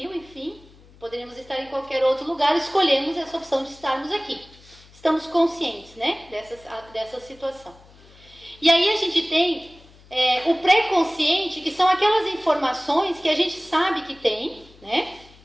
enfim, poderíamos estar em qualquer outro lugar, escolhemos essa opção de estarmos aqui. Estamos conscientes, dessa situação. E aí a gente tem o pré-consciente, que são aquelas informações que a gente sabe que tem,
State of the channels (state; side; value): noise; left; hum, 25 dB below the sound